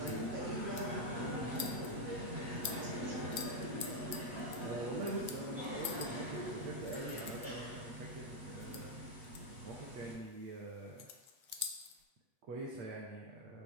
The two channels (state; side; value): late; left; 8.2 ms